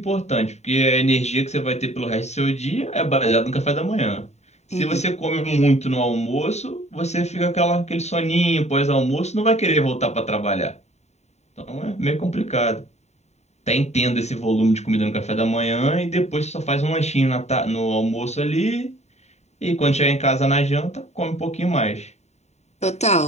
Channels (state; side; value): late; right; 0.32 ms